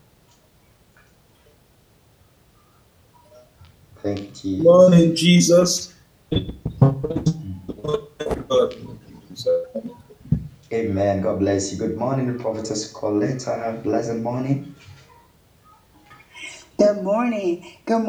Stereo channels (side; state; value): both; identical; correlation 1.00